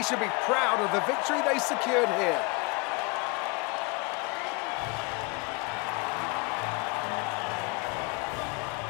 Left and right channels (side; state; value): right; quieter; 28.2 dB